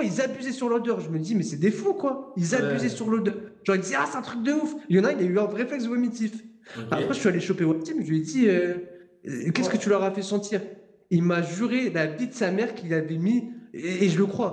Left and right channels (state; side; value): identical; both; correlation 1.00